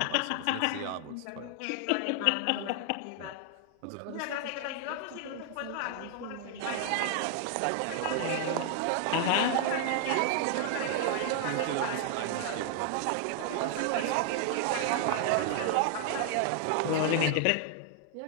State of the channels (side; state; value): both; different; correlation 0.00